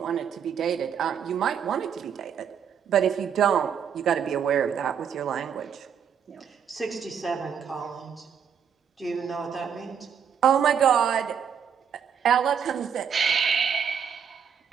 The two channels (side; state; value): left; quieter; 7.7 dB